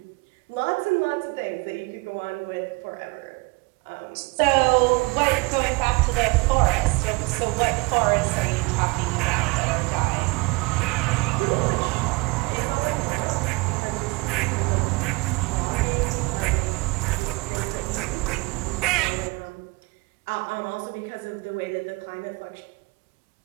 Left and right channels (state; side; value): quieter; left; 25.7 dB